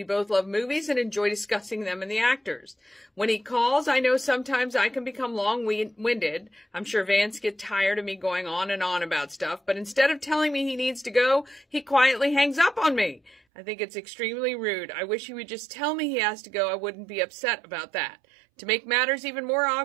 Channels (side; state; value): left; drops out; at 13.4 s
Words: both love movies and enjoy discussing them and the actors. When he calls, I know sometimes I can become long-winded. I'm sure Vance gets tired of me going on and on about stuff, but instead of telling me he needs to go, he quietly hangs up on me. I think it's extremely rude. I wish he would just tell me he has to go. I wouldn't be upset about that. To make matters even more